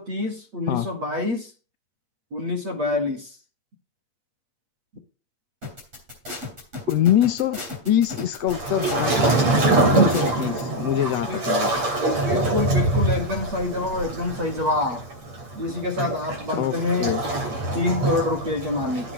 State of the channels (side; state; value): left; late; 8.6 ms